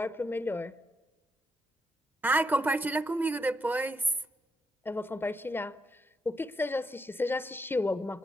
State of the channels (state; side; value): normal; both; correlation 0.80